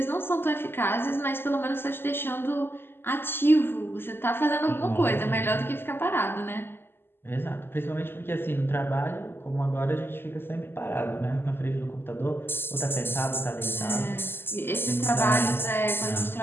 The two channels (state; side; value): late; right; 0.11 ms